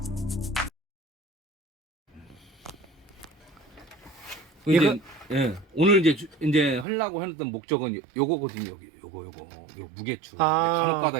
오늘 이제 하려고 했던 목적은 요거거든요. 요거 무게추.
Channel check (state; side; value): drops out; left; at 6.9 s